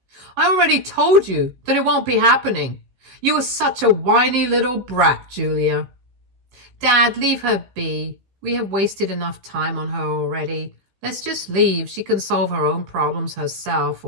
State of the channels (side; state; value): left; late; 15 ms